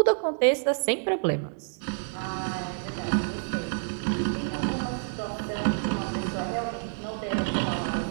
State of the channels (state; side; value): silent; left; 59 dB below the other